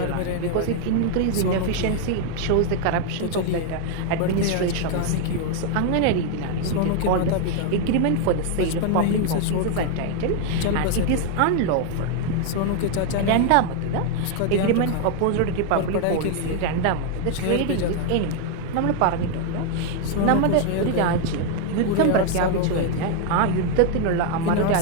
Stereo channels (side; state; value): both; different; correlation 0.00